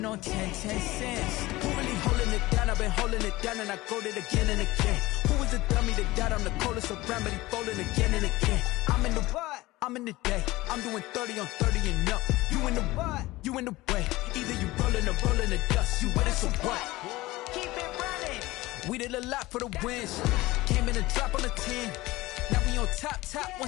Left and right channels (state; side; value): quieter; right; 19.1 dB